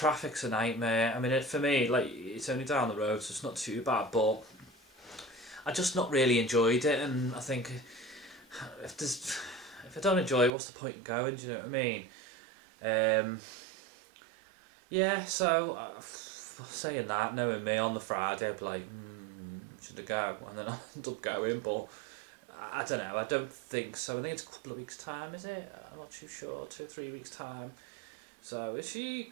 a nightmare. I mean, for me, like, it's only down the road, so it's not too bad. But I just not really enjoyed it, and I think if I don't enjoy it, what's the point in going? Do you know what I mean? Yeah. So. Saying that, knowing me, on the Friday I'd be like, should I go? And then I'll end up going, but I don't know, I don't think so. I think it's a couple of weeks' time, is it? I'm not too sure, 2 or 3 weeks' time. So it's a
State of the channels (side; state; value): left; drops out; at 10.5 s